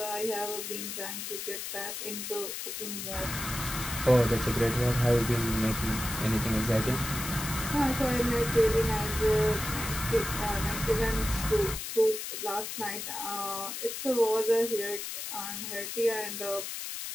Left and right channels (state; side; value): noise; left; hiss, 6 dB below the sound